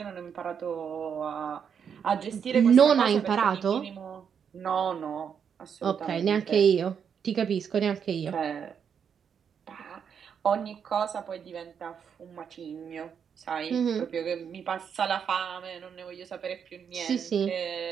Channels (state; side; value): quieter; left; 7.4 dB